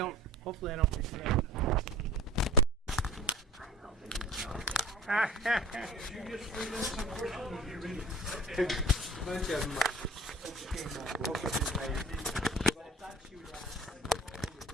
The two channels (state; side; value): normal; both; correlation 0.42